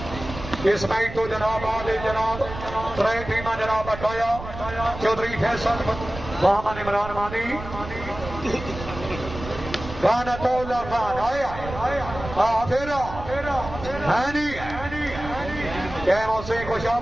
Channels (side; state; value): right; noise; rumble, 11 dB below the sound